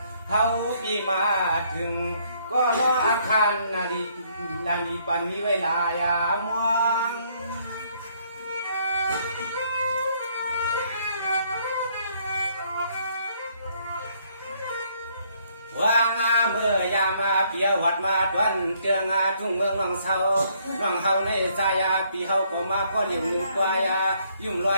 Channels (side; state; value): both; inverted; correlation -0.67